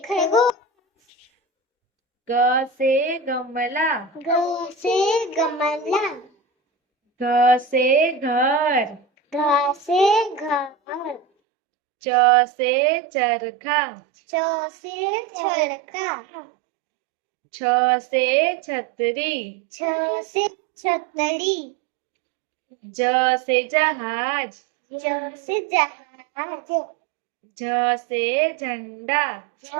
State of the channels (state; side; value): drops out; left; at 11.2 s